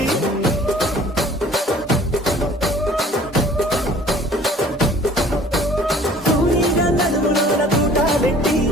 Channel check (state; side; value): normal; both; correlation 0.50